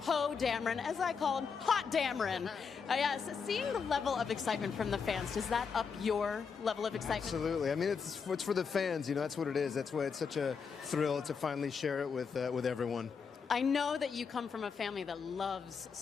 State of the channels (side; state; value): right; quieter; 5.9 dB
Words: Dameron, as I call him, Hot Dameron. Yes, seeing the level of excitement from the fans, does that up your level of excitement? Absolutely. I mean, it's for the fans. You know, that's what it is. That's why it's such a thrill to finally share it with everyone. I know that you come from a family that loves